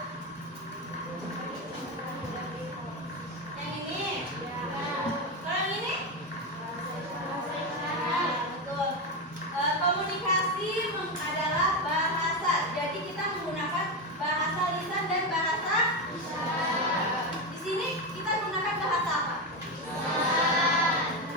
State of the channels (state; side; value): normal; both; correlation 0.12